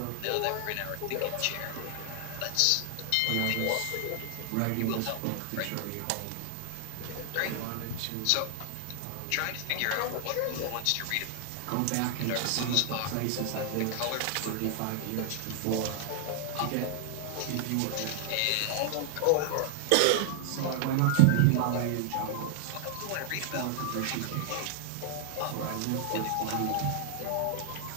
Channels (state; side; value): different; both; correlation 0.00